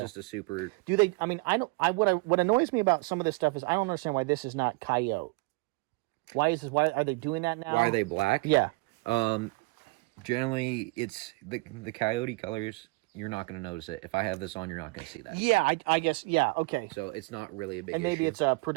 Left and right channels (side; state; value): left; quieter; 26.9 dB